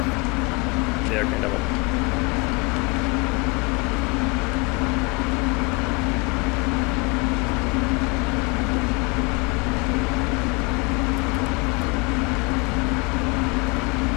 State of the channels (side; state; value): right; quieter; 28.7 dB